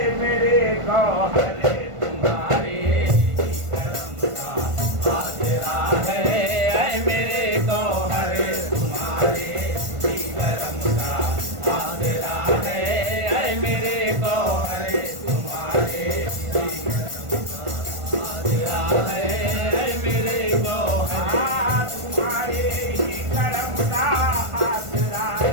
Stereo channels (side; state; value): left; late; 1.5 ms